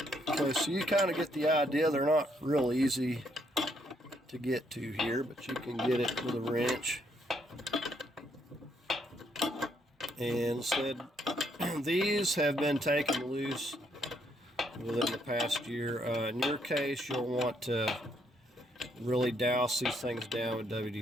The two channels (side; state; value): both; normal; correlation 0.72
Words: Okay, so you kind of get the idea. They're not real easy to get to here, but you can get it with a wrench. And instead these have been taken loose within the past year. In your case, you'll want to really douse these things down with